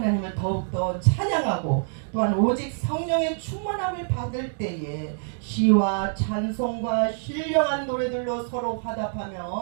더욱더 찬양하고 또한 오직 성령의 충만함을 받을 때에 시와 찬송과 신령한 노래들로 서로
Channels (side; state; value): left; silent; digital silence